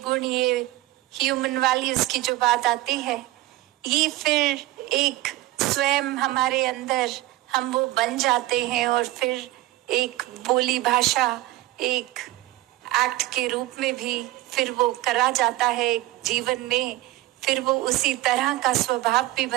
ये ह्यूमन वैल्यूज की जो बात आती है, ये फिर एक स्वयं हमारे अंदर हम वो बन जाते हैं और फिर एक बोली भाषा, एक एक्ट के रूप में भी फिर वो करा जाता है जीवन में, फिर वो उसी तरह का स्वभाव भी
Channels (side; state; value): left; quieter; 17.1 dB